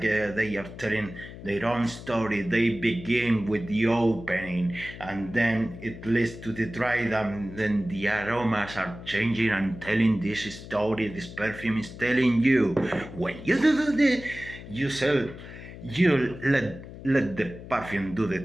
they are telling their own story. They begin with the opening, and then it leads to the dry down. Then the aromas are changing and telling this story. This perfume is telling you. When you do this, you let the perfume do the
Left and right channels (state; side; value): noise; left; hum, 14 dB below the sound